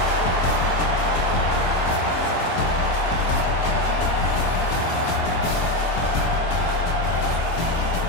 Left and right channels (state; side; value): late; right; 24 ms